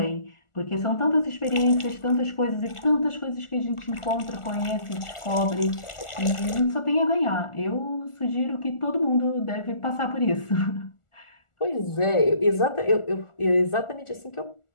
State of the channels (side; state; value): right; late; 1.4 ms